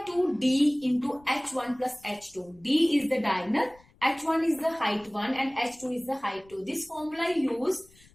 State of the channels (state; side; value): noise; left; rumble, 28 dB below the sound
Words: 2 D into H1 plus H2. D is the diagonal, H1 is the height 1 and H2 is the height 2. This formula used